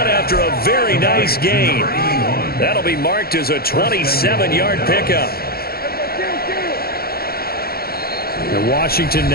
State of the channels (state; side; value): late; right; 0.44 ms